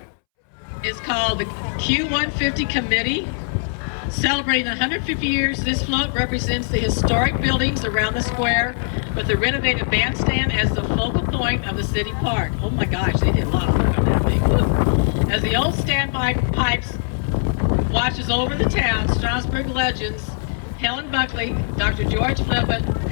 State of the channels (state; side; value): silent; right; 65 dB below the other